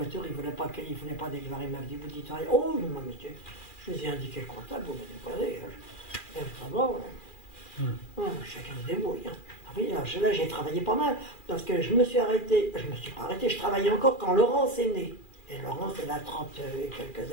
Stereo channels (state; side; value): late; right; 2.4 ms